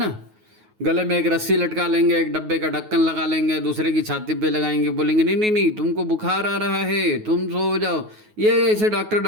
गले में एक रस्सी लटका लेंगे, एक डब्बे का ढक्कन लगा लेंगे, दूसरे की छाती पे लगाएंगे, बोलेंगे नहीं नहीं नहीं तुमको बुखार आ रहा है, तुम सो जाओ। ये ऐसे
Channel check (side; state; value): left; late; 9.4 ms